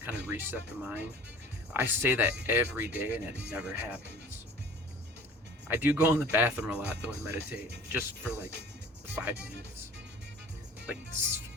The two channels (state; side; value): normal; both; correlation 0.46